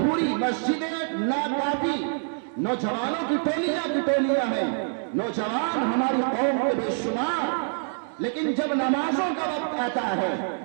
मस्जिदें नाकाफी, नौजवानों की टोलियां हैं, नौजवान हमारी कौम के बेशुमार। लेकिन जब नमाजों का वक्त आता है,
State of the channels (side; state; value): left; silent; digital silence